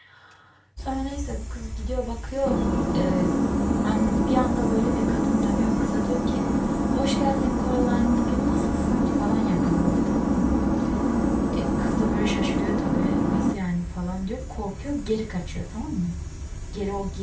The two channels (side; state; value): both; identical; correlation 1.00